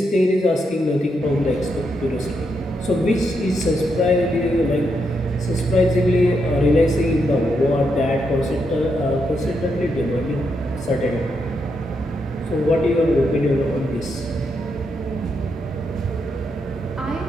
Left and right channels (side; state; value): both; normal; correlation 0.81